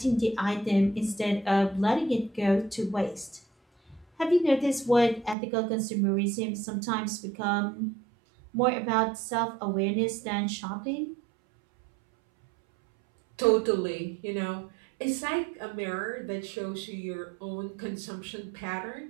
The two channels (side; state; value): left; drops out; at 5.4 s